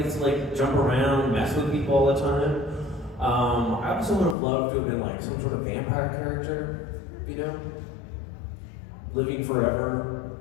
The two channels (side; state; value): right; drops out; at 4.4 s